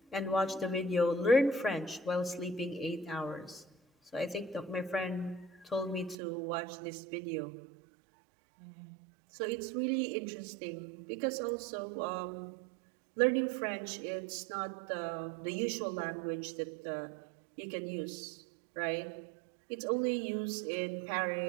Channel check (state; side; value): drops out; left; at 6.2 s